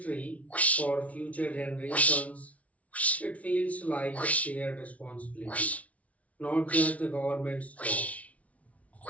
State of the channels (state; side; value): late; right; 0.067 ms